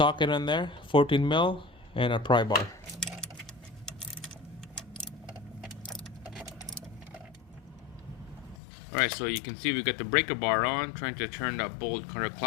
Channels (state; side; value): drops out; right; at 8.6 s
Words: in there, 14mm, and a pry bar. Alright, so you can see we got the breaker bar on, trying to turn that bolt